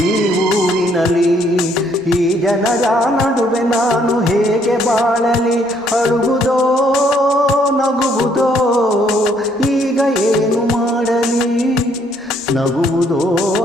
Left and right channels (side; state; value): both; normal; correlation 0.67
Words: ಈ ಊರಿನಲ್ಲಿ. ಈ ಜನರ ನಡುವೆ ನಾನು ಹೇಗೆ ಬಾಳಲಿ? ಅಳುವುದೋ ನಗುವುದೋ ಈಗ ಏನು ಮಾಡಲಿ? ನಗುವುದೋ